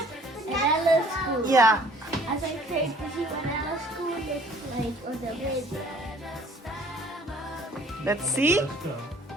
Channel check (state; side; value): normal; both; correlation 0.56